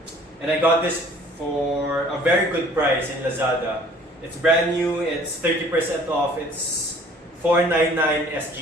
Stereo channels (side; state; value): both; normal; correlation 0.53